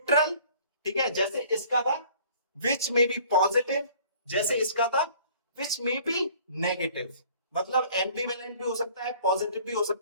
ठीक है, जैसे इसका था, विच मे बी पॉजिटिव, जैसे इसका था, विच मे बी नेगेटिव। मतलब एम्बिवेलेंट भी हो सकता है, पॉजिटिव भी हो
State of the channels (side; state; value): both; inverted; correlation -0.52